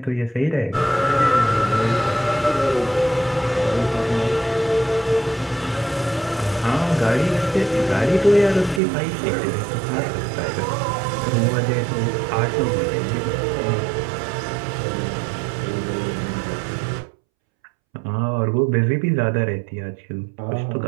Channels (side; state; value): left; drops out; at 8.8 s